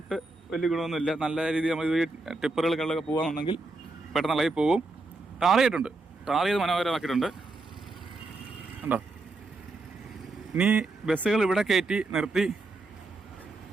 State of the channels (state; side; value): quieter; left; 3.2 dB